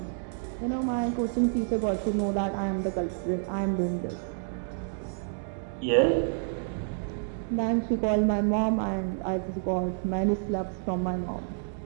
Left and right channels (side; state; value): left; silent; digital silence